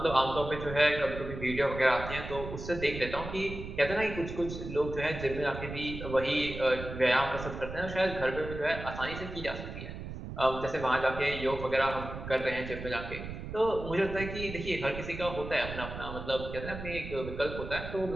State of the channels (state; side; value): noise; right; rumble, 9 dB below the sound